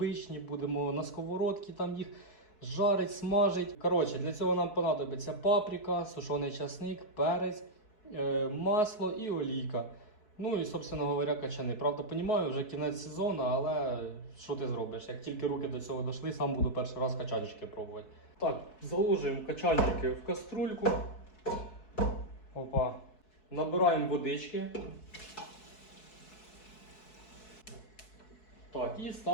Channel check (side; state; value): right; late; 4.6 ms